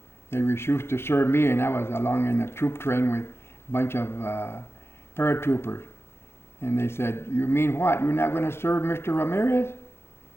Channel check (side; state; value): right; late; 0.12 ms